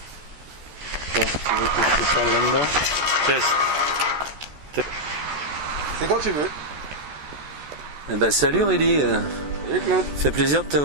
Tu veux que je te parle là-dedans? Test. C'est quand tu veux. Eh ben, salut Rudy. Salut Claude. Fait plaisir de te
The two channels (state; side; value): late; left; 14 ms